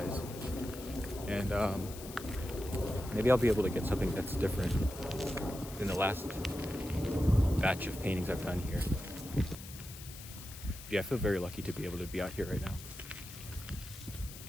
And maybe I'll be able to get something that's different than the last batch of paintings I've done here. Yeah, I feel very lucky to be able to be out here right now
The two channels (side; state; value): left; noise; hiss, 14 dB below the sound